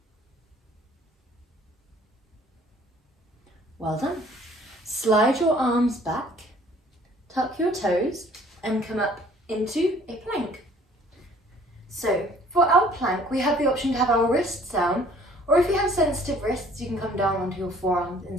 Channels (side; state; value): both; normal; correlation 0.56